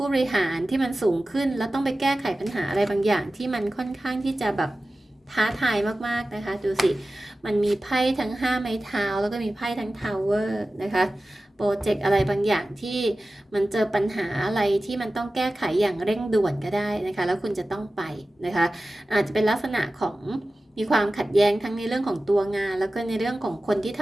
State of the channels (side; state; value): both; normal; correlation 0.95